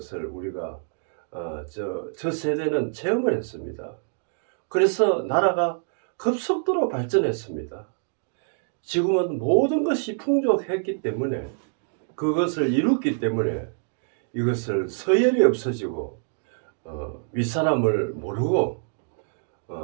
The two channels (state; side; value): silent; left; digital silence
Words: 우리가 저 세대는 체험을 했습니다. 그래서 나라가 급속도로 발전했습니다. 지금은 모든 것이 풍족했기 때문에, 그것을 이뤘기 때문에 이것을 서열이 없어지고 윗사람을 모르고